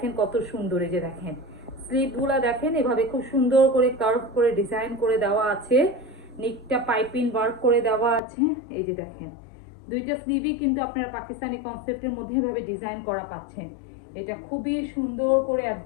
কত সুন্দর। এই যে দেখেন স্লিভগুলা দেখেন এভাবে খুব সুন্দর করে কার্ভ করে ডিজাইন করে দেওয়া আছে। নিকটা পাইপিং ওয়ার্ক করে দেওয়া আছে। এই যে দেখেন দুইটা স্লিভই কিন্তু আপনারা পাকিস্তানি কনসেপ্টের মধ্যে এভাবে ডিজাইন করা পাচ্ছেন। এটা খুবই সুন্দর করে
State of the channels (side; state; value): right; drops out; at 8.2 s